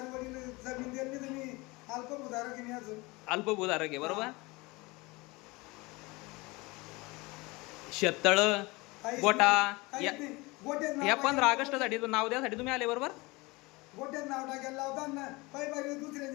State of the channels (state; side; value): quieter; right; 23.9 dB